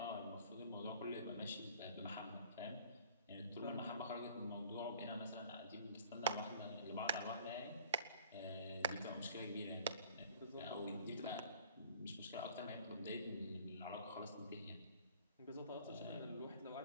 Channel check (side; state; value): both; inverted; correlation -0.50